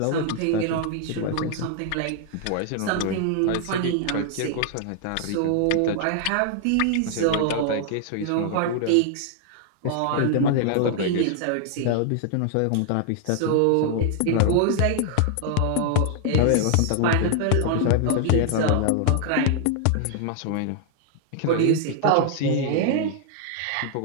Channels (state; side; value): different; both; correlation 0.00